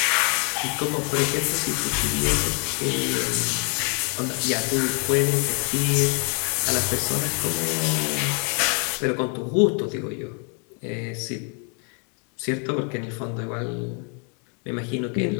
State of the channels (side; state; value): right; quieter; 39.0 dB